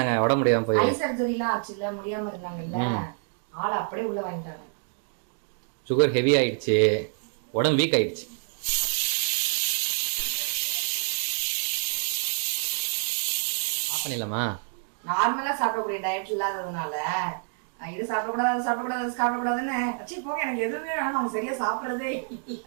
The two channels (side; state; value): left; silent; 60 dB below the other